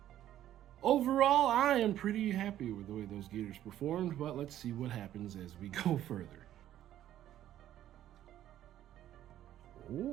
Overall, I am pretty happy with the way those Gators performed, but let's see what happens as we go further.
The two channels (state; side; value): quieter; left; 12.2 dB